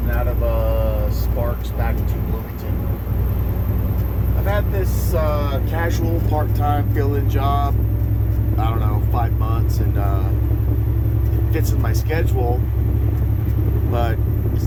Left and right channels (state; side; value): identical; both; correlation 1.00